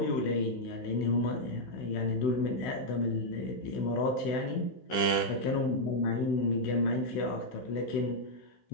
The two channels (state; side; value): late; right; 15 ms